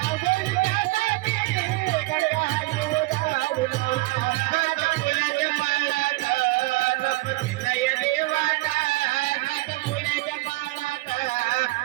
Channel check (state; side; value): quieter; left; 21.6 dB